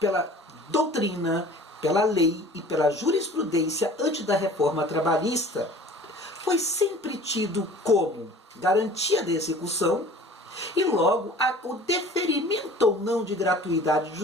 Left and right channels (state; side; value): normal; both; correlation 0.46